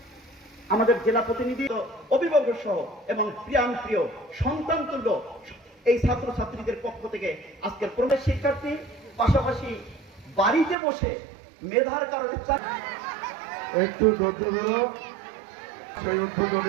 আমাদের জেলা প্রতিনিধি, অভিভাবক সহ এবং প্রিয়ান প্রিয় সন্তান তুল্য এই ছাত্রছাত্রীদের পক্ষ থেকে আজকের প্রবেশ শিক্ষার্থী পাশাপাশি বাড়িতে বসে মেধার কারণে একটু ধৈর্য ধরো। সেই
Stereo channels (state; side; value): drops out; left; at 10.8 s